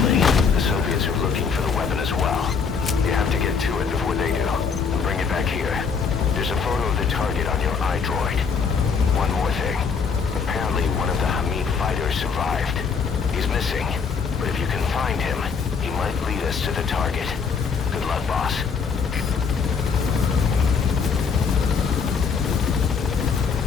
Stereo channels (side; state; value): right; quieter; 5.7 dB